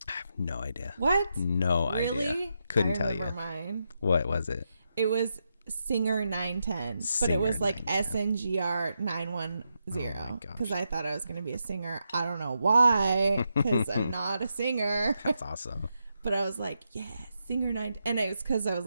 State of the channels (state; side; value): inverted; both; correlation -0.84